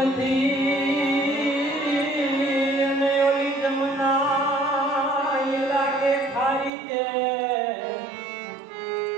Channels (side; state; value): left; drops out; at 6.7 s